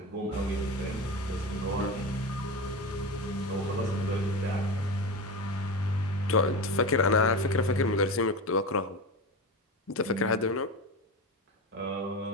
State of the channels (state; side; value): normal; both; correlation 0.23